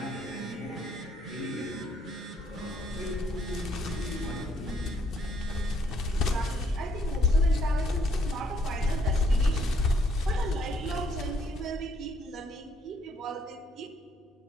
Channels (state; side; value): normal; both; correlation 0.68